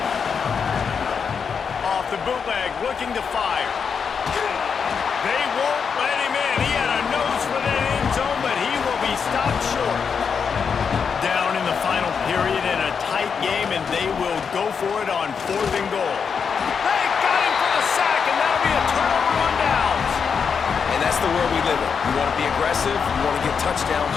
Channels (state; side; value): quieter; right; 6.3 dB